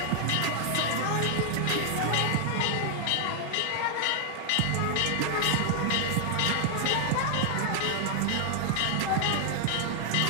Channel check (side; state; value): both; different; correlation 0.00